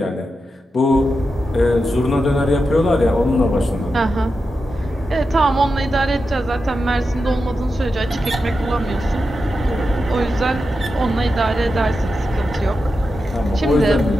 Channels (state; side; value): normal; both; correlation 0.89